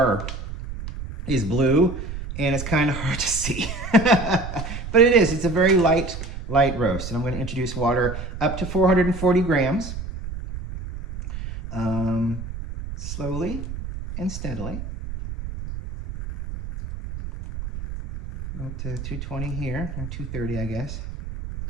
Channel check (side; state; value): right; noise; rumble, 8 dB below the sound